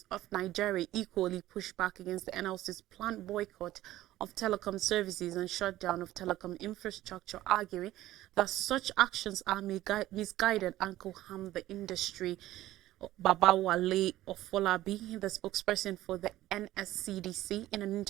of Nigeria equally pushed back against the NLC's planned boycott of telecom services and shutdown of telecom infrastructure, arguing that such actions are misguided and could harm the industry. Babawale Ofolabi, the spokesperson for the NSCDC, in an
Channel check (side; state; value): left; quieter; 15.1 dB